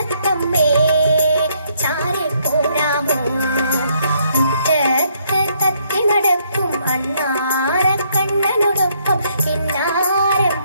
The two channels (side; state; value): both; inverted; correlation -0.70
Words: ചാരെ പോരാമോ. മുറ്റത്ത് തത്തി നടക്കും അണ്ണാറക്കണ്ണനോടൊപ്പം കിന്നാരം